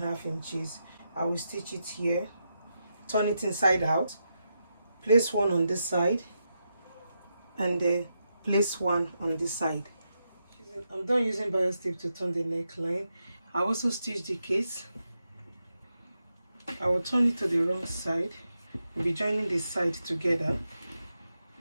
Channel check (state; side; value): inverted; both; correlation -0.85